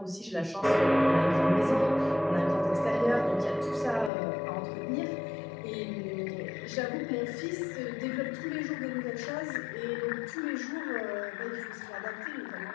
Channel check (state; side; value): drops out; right; at 4.1 s